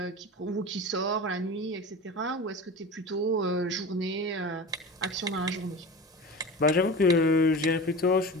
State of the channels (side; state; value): both; normal; correlation 0.32